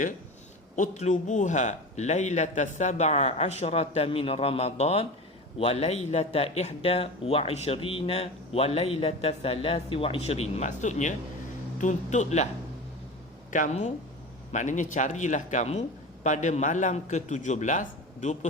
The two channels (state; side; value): normal; both; correlation 0.30